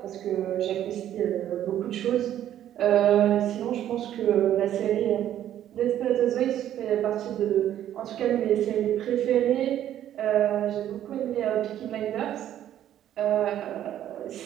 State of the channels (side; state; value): left; quieter; 11.4 dB